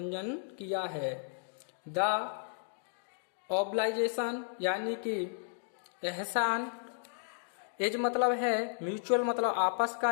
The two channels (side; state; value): right; silent; digital silence